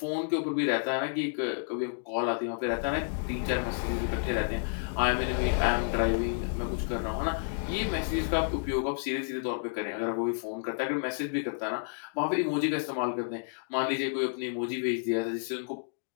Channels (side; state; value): right; silent; digital silence